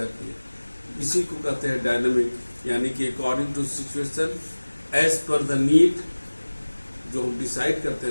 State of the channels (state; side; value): inverted; both; correlation -1.00